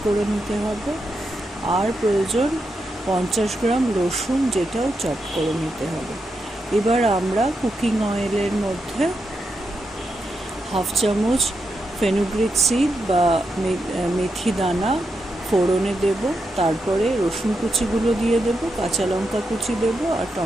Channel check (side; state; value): both; normal; correlation 0.85